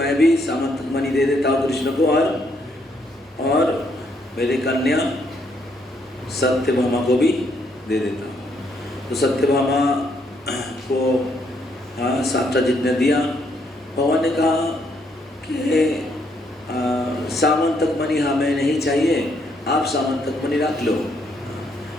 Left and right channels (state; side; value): normal; both; correlation 0.72